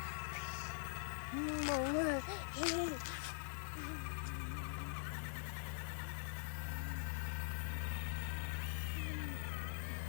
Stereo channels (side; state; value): right; silent; digital silence